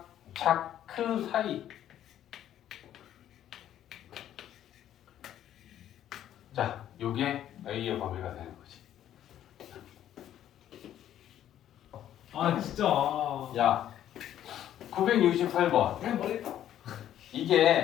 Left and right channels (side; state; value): right; quieter; 11.3 dB